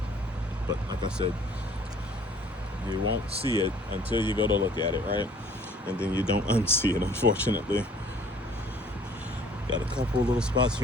But like I said, you won't see it until you go to look at it, right? And then you don't unsee it, unfortunately. Got a couple little spots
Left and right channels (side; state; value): both; normal; correlation 0.55